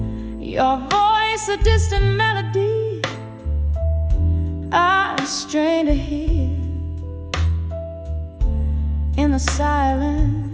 Your voice a distant melody I strain to hear. In the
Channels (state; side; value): identical; both; correlation 1.00